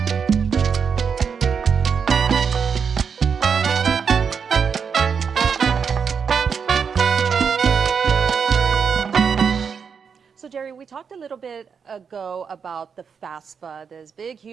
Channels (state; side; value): quieter; left; 6.4 dB